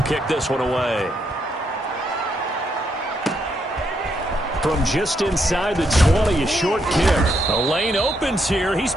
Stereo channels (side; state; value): both; normal; correlation 0.77